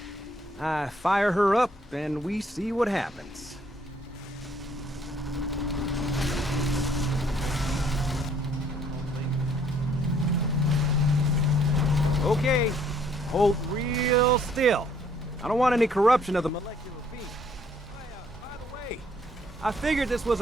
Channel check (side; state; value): both; normal; correlation 0.64